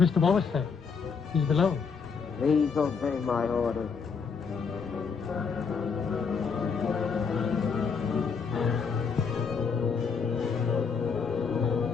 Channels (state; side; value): quieter; right; 5.6 dB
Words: Wallace there? He's below. Please obey my orders.